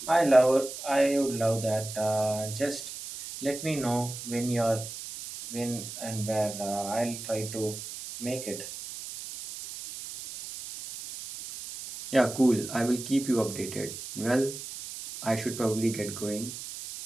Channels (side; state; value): right; noise; hiss, 10 dB below the sound